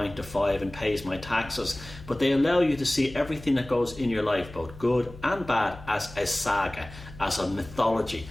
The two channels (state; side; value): noise; left; hum, 17 dB below the sound